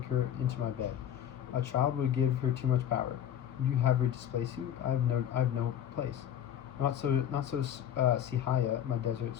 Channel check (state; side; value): quieter; right; 10.0 dB